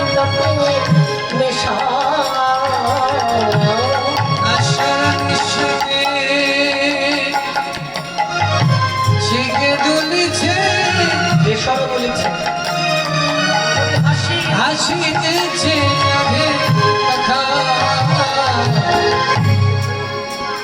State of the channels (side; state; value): both; identical; correlation 1.00